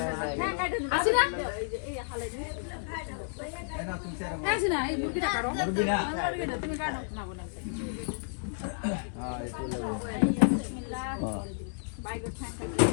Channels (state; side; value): silent; right; digital silence